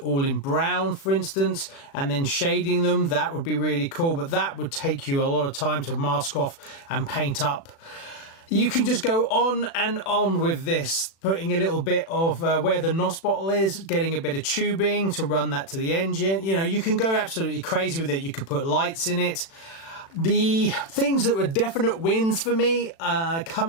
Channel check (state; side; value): late; right; 36 ms